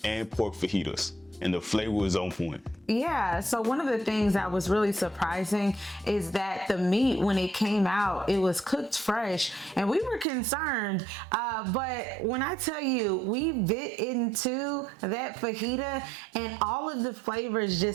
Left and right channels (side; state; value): left; drops out; at 10.2 s